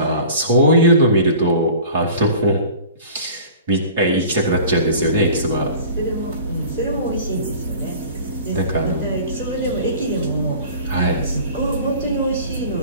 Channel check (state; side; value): inverted; both; correlation -0.43